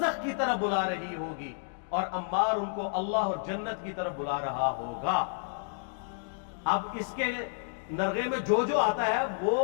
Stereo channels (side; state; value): right; silent; digital silence